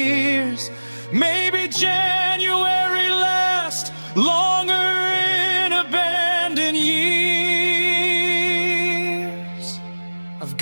Maybe January lasts longer in abandoned years. I've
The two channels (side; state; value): both; inverted; correlation -1.00